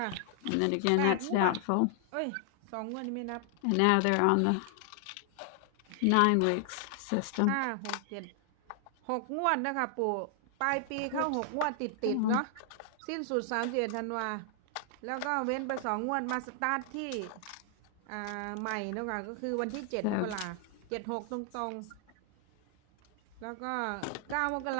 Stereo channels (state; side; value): different; both; correlation 0.00